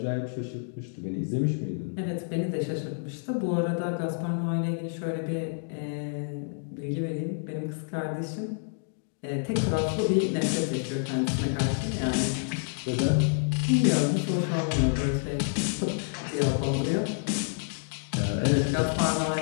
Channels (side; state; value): right; silent; digital silence